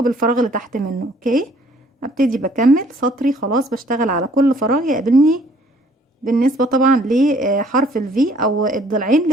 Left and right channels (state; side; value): normal; both; correlation 0.59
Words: بالفراغ اللي تحت منه. اوكي، ابتدي بكمل سطري خلاص، بشتغل على كل فراغ يقابلني بالنسبة طبعا لحرف الفي او الضلعين